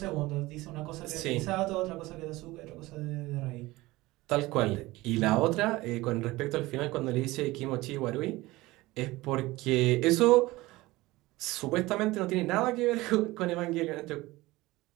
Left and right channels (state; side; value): quieter; left; 19.6 dB